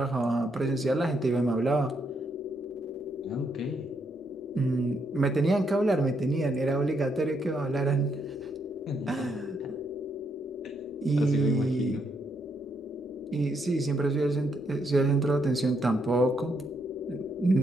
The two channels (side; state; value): both; normal; correlation 0.76